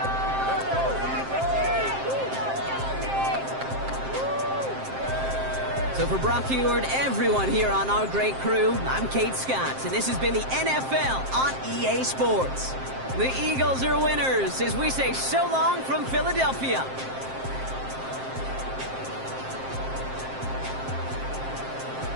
So for Brock Heward, everyone here on our great crew, I'm Kate Scott, and this has been the NFL on EA Sports. The Eagles are winners as we say so long from Philadelphia.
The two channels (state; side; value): late; left; 7.6 ms